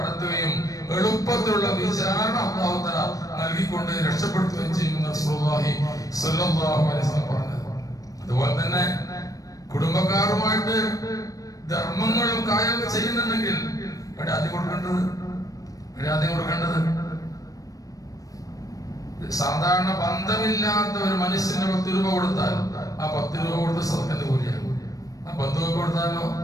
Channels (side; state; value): right; late; 0.17 ms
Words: എളുപ്പത്തിലുള്ള വിചാരണ അല്ലാഹു തആല നൽകിക്കൊണ്ട് രക്ഷപ്പെടുത്തുകയും ചെയ്യുമെന്ന് റസൂലുള്ളാഹി സ്വല്ലല്ലാഹു അലൈഹി വസല്ലം പറഞ്ഞത്. അതുപോലെ തന്നെ കുടുംബക്കാരുമായിട്ട് ധർമ്മങ്ങളും കാര്യങ്ങളും ചെയ്യുന്നുണ്ടെങ്കിൽ ആദ്യം കൊടുക്കേണ്ടത് സാധാരണ ബന്ധമില്ലാത്ത ഒരു മനുഷ്യന് 10 രൂപ കൊടുത്താൽ ആ 10 രൂപ കൊടുത്ത് സദഖന്റെ കൂലിയാണ്. ആ ബന്ധുവൊക്കെ കൊടുത്താലോ